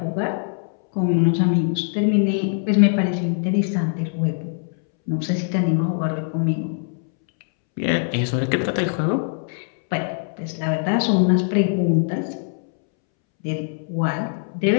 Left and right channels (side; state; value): right; silent; 64 dB below the other